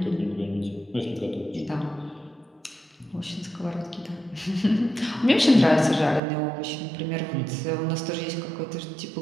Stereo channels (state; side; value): drops out; left; at 6.2 s